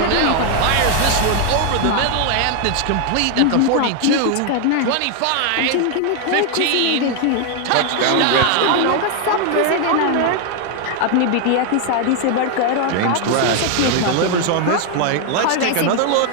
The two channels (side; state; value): both; different; correlation 0.01